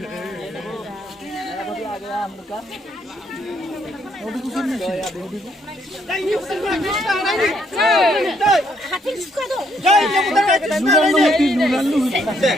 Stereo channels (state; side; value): normal; both; correlation 0.71